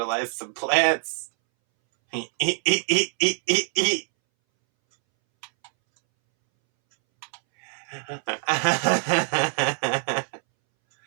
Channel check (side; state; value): left; silent; 62 dB below the other